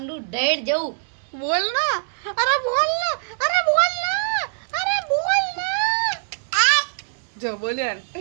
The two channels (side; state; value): left; silent; digital silence